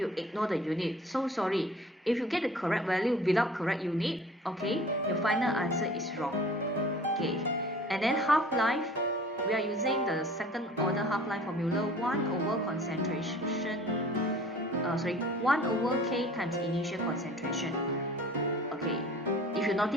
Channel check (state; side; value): normal; both; correlation 0.47